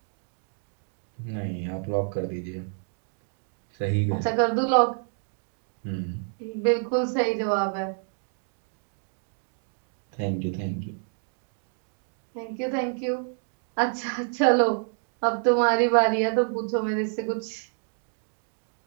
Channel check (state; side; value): silent; left; 57 dB below the other